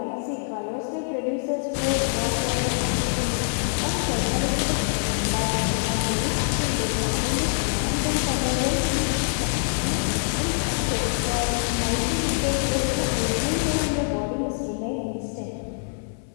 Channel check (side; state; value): right; silent; 62 dB below the other